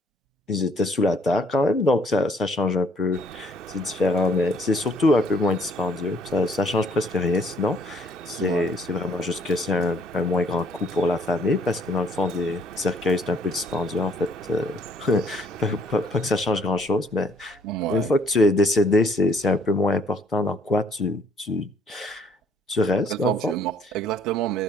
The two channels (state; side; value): normal; both; correlation 0.63